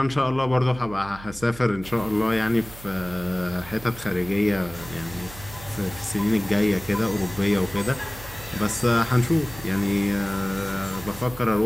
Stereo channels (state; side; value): noise; right; hum, 16 dB below the sound